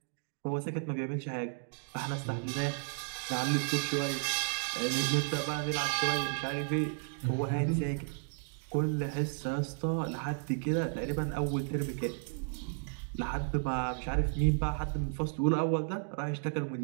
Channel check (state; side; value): silent; left; digital silence